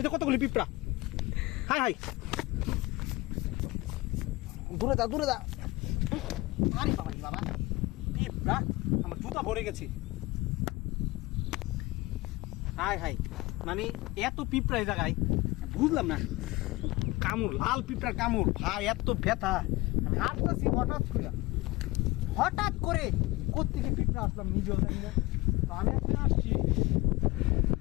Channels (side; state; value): right; quieter; 20.8 dB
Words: কতগুলি পিঁপড়া। হাই হাই, দূরে দা দূরে দা। আরে বাবা বাবা, পিঁপড়া আমার জুতা ভরে গেছে। হাই হাই, মানে এত পিঁপড়া এই জায়গায় বুঝলাম না। কামড়, লাল পিঁপড়ার কামড় ভাই, এত ব্যথা। আমি হাঁটতেছি হঠাৎ করে কোত্থেকে পিঁপড়া আসলাম নিজেও জানি না। তো আমি এখানে আসছি,